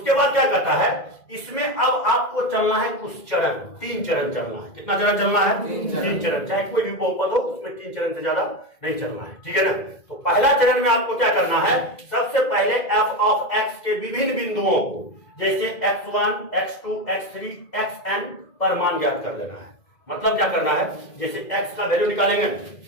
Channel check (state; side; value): late; right; 2.0 ms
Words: बाद क्या कहता है, इसमें अब आपको चलना है कुछ चरण, 3 चरण चलना है। कितना चरण चलना है? 3 चरण। चाहे कोई भी बहुपद हो उसमें 3 चरण से ज्यादा नहीं चलना है, ठीक है ना। तो पहला चरण में आपको क्या करना है, सबसे पहले f ऑफ x के विभिन्न बिंदुओं को जैसे x1, x2, x3, xn पर मान ज्ञात कर लेना है। मतलब क्या करना है, जैसे x का वैल्यू निकालेंगे,